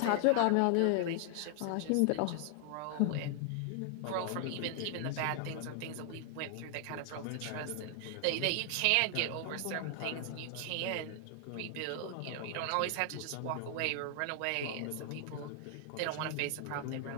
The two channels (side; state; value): both; different; correlation 0.00